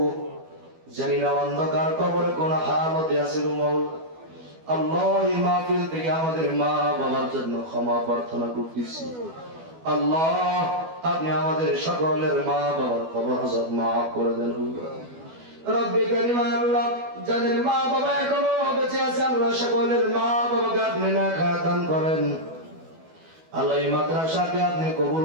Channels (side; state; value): left; late; 12 ms